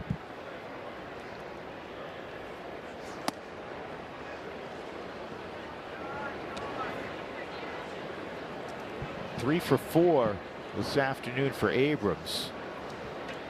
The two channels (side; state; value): both; identical; correlation 1.00